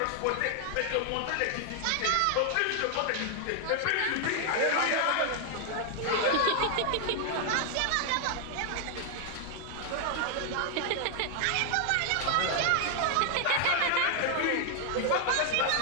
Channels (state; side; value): different; both; correlation 0.00